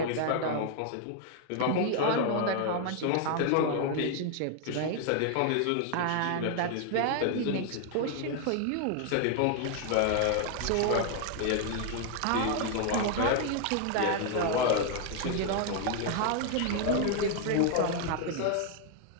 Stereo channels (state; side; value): different; both; correlation 0.00